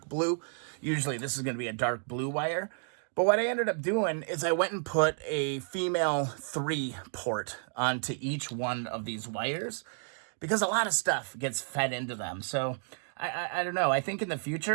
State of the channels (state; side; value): silent; left; 57 dB below the other